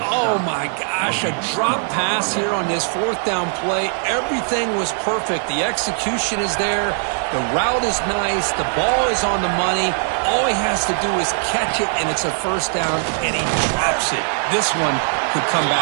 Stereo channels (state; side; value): silent; left; 66 dB below the other